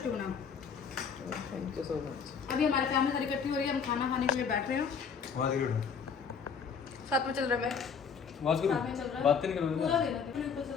बना। Thank you so much. अभी हमारी फैमिली सारी इकट्ठी हो रही है, हम खाना खाने के लिए बैठ रहे हैं। साथ में चल रहा है। आवाज करो, साथ में चल रहा है। बात नहीं करो पूरा देना, पूरा ऊपर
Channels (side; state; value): right; quieter; 6.2 dB